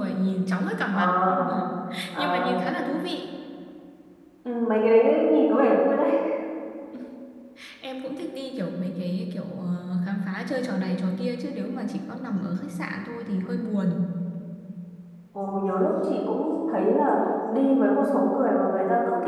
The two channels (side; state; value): both; identical; correlation 1.00